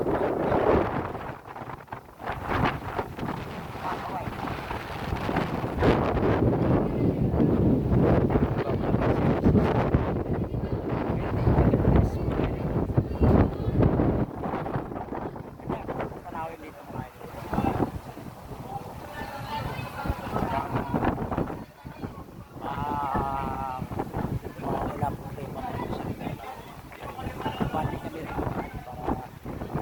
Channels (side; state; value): both; identical; correlation 1.00